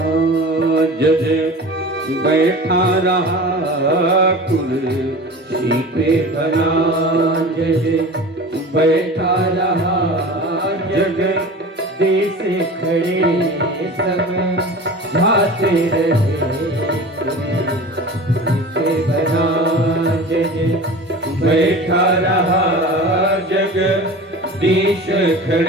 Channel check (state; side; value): normal; both; correlation 0.36